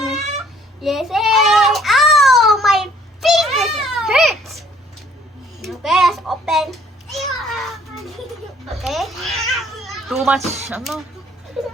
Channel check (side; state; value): both; normal; correlation 0.59